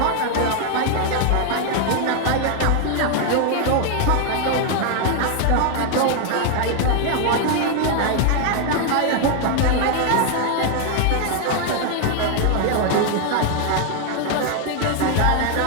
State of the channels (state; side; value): different; both; correlation 0.00